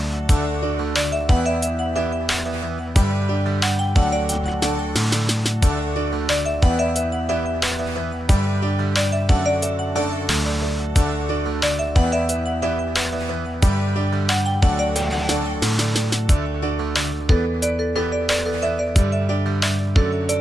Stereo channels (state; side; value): normal; both; correlation 0.89